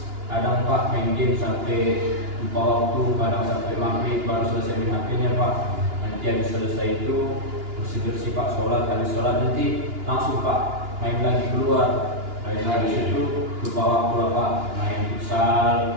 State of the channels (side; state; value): left; late; 2.9 ms